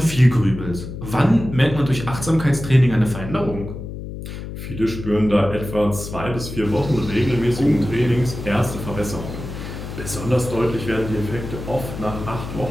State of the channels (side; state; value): left; noise; hum, 9 dB below the sound